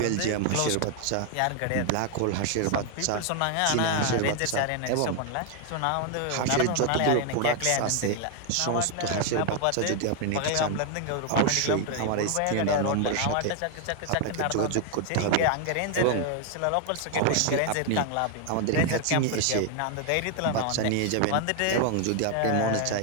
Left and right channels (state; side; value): different; both; correlation 0.00